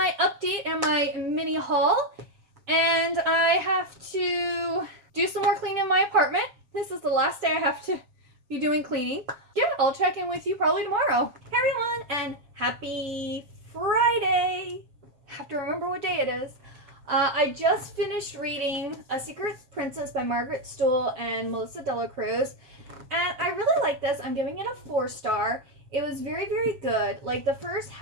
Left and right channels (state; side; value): late; left; 7.4 ms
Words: update and my mini haul. And I have to do some more cleaning in my apartment. This is the last day I have to be doing cleaning. Yeah, I'll check in with you probably tomorrow. Hey everyone, and happy Friday. I have to remember what day it is. I just finished reading A Secret Princess by Margaret Stohl and Melissa De La Cruz, and I really like this. I'm giving it a 4-star. It was very, very good. Like, the first